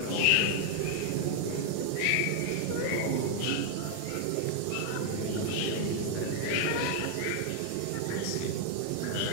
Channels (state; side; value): different; both; correlation 0.00